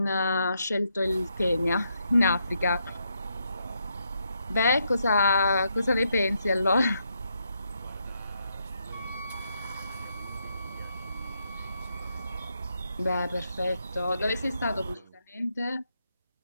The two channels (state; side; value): inverted; both; correlation -0.79